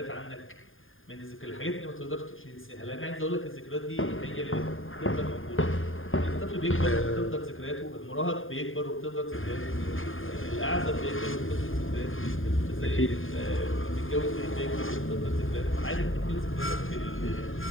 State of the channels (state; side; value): late; right; 0.59 ms